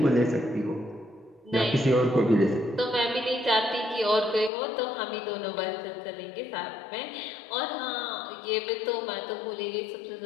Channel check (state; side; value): drops out; right; at 4.5 s